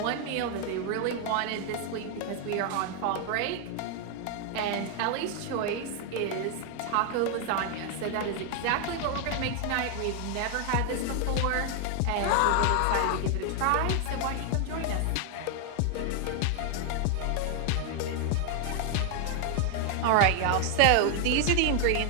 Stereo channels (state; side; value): different; both; correlation 0.00